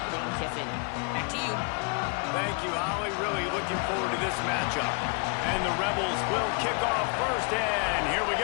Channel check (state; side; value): quieter; right; 35.3 dB